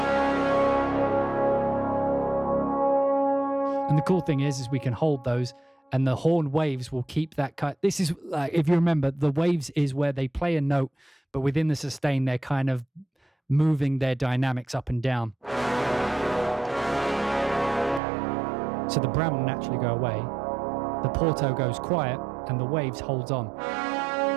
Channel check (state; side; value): drops out; left; at 18.0 s